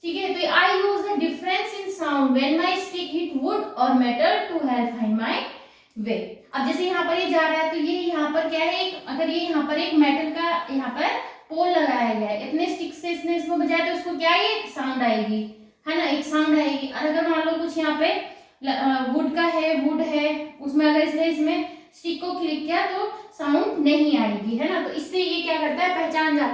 ठीक है, तो I use the difference in sound when my stick hit wood or metal to help find my way. अब जैसे यहाँ पर ये जा रहा है, तो ये यहाँ पर क्या है, अगर ये यहाँ पर एक मेटल का यहाँ पर पोल लगाया गया है, इतने स्टिक से इसने इसको बजाया तो उसको क्या है, एक साउंड आएगी, है ना, एक साउंड आएगी। और अगर मान लो कुछ यहाँ पे वुड का है, वुड है, उसमें अगर इसने इसमें स्टिक को क्लिक किया तो साउंड नहीं आएगी, है ना। तो इससे ये क्या करता है, पहचान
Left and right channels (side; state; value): both; identical; correlation 1.00